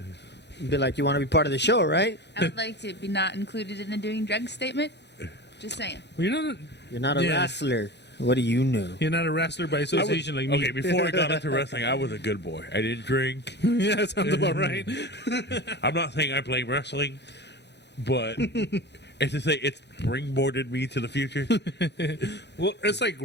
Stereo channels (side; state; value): right; late; 0.50 ms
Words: be like, "You want to be part of the show, right? I would like to be not included in the doing drugs statement. Just saying. Well, You're not a Yeah. wrestler. What do you know?" you're not a wrestler by association like me. Okay, before I got into wrestling, I was a good boy. I didn't drink. Yeah, that sounds about right. I'm not saying I play wrestling, but it's to say it's springboarded me to the future. Well, it's like